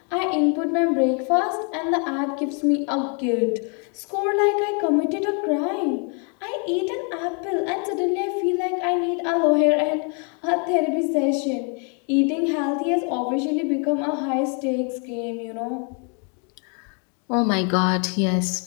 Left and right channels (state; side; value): quieter; right; 38.7 dB